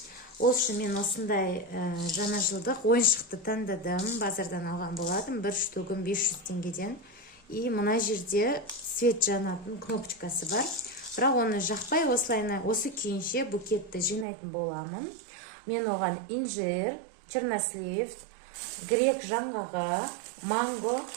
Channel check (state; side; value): drops out; left; at 14.2 s